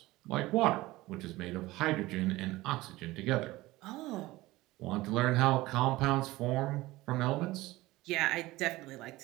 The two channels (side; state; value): left; quieter; 18.8 dB